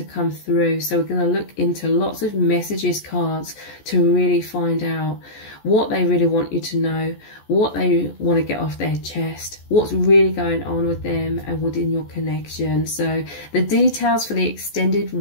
come through. So we're going to look into lots of messages cards to really find out what they really want you to know, what they want to get off their chest, what's really going on with them and within your connection. So the details for the extended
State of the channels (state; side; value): late; right; 14 ms